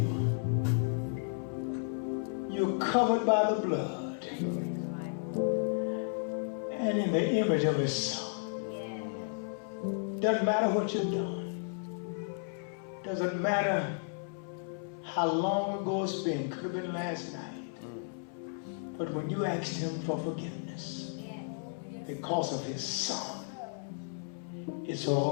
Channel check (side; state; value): right; silent; 55 dB below the other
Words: you're covered by the blood and in the image of his Son. Doesn't matter what you've done. Doesn't matter how long ago it's been. Could have been last night. But when you asked him for forgiveness because of his Son, it's